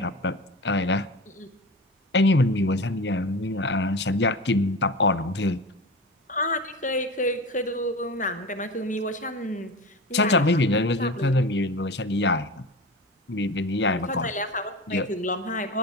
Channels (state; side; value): normal; both; correlation 0.29